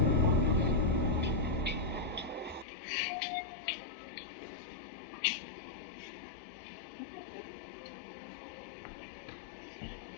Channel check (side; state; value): right; drops out; at 2.7 s